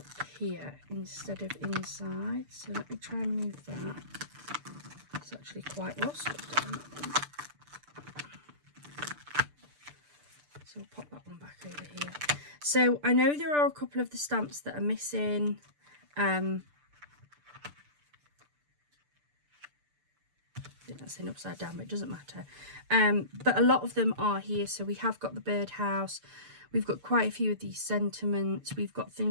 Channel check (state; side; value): late; left; 6.8 ms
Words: here instead of inside. So let me try and move that. It's actually quite well stuck down that one. So I'll pop that one back over here. So I know there are a couple of the stamps that are missing. I think that's in upside down, but it doesn't matter. But a lot of them are here. So we have got the birdhouse. We've got quite a few of these sentiments. We've got